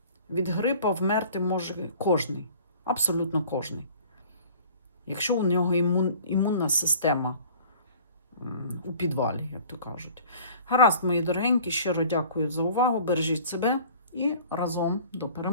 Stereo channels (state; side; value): inverted; both; correlation -0.48